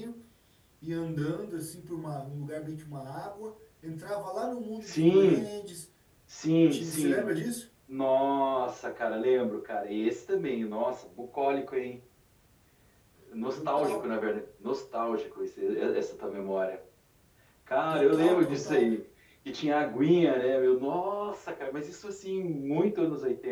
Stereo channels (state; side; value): identical; both; correlation 1.00